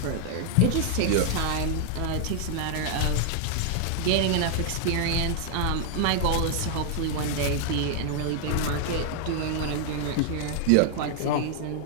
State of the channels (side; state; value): both; different; correlation -0.01